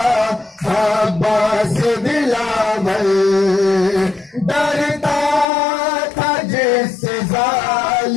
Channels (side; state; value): right; drops out; at 5.5 s